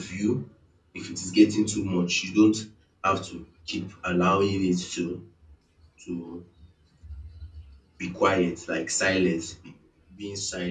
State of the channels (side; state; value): both; identical; correlation 1.00